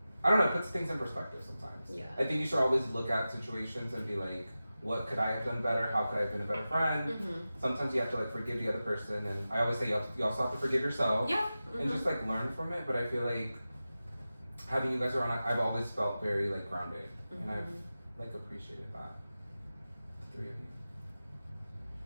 I don't know, it puts things in perspective sometimes. Yeah. I think you should always look at situations and be like, what could I have done better? How could I have been a better friend? Mm-hmm. Sometimes you have to like forgive the other person, and I always say you also have to forgive yourself. Yeah. And just like learn from it. But I feel like having you guys around, I've always felt very like grounded, and I've like appreciated that. The three of you.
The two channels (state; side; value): inverted; both; correlation -0.94